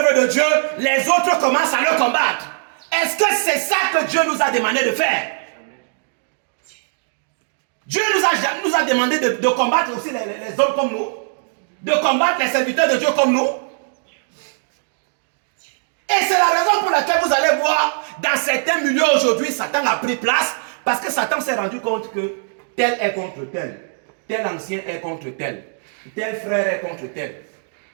de Dieu, les autres commencent à le combattre. Est-ce que c'est ça que Dieu nous a demandé de faire? Dieu nous a demandé de combattre aussi les hommes comme nous, de combattre les serviteurs de Dieu comme nous. Et c'est la raison pour laquelle vous allez voir dans certains milieux aujourd'hui, Satan a pris place, parce que Satan s'est rendu compte que tel est contre tel, tel ancien est contre tel frère est contre tel.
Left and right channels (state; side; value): silent; left; digital silence